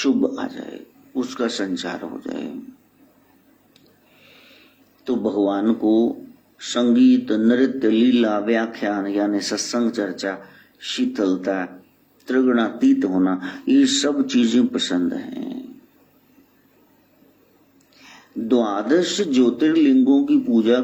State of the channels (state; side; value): identical; both; correlation 1.00